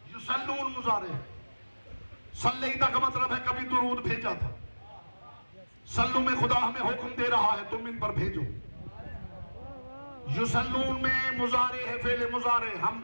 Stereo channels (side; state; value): both; inverted; correlation -1.00